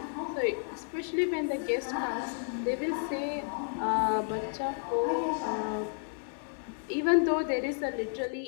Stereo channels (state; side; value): silent; right; 57 dB below the other